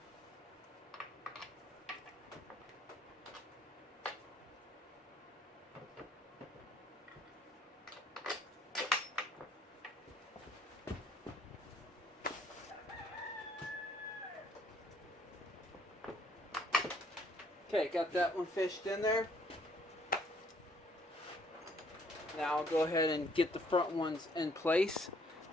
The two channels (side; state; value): both; normal; correlation 0.64